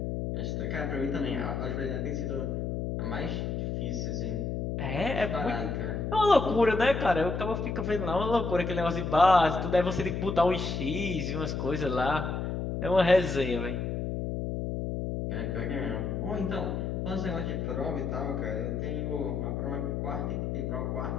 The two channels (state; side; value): noise; left; hum, 2 dB below the sound